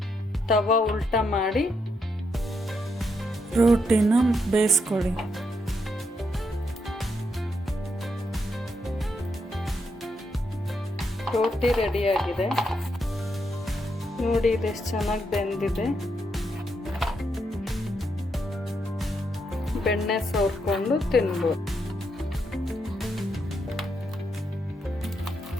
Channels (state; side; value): normal; both; correlation 0.80